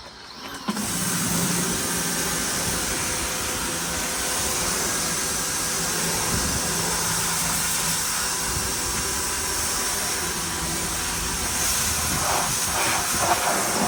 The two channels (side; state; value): both; identical; correlation 1.00